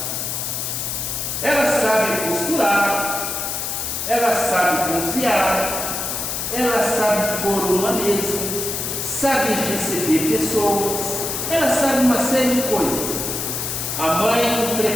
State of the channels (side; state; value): left; noise; hiss, 3 dB below the sound